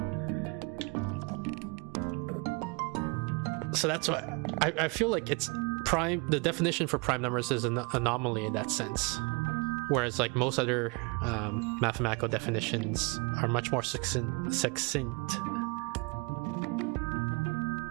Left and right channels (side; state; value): left; quieter; 29.9 dB